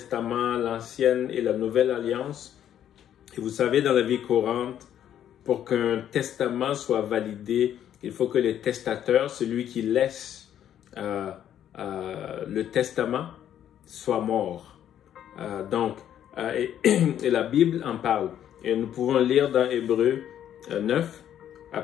l'Ancienne et la Nouvelle Alliance. Et vous savez, dans la vie courante, pour qu'un testament soit validé, il faut que le testateur, celui qui laisse le testament, soit mort. Et la Bible en parle. Et nous pouvons lire dans Hébreux 9, à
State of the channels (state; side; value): quieter; right; 10.4 dB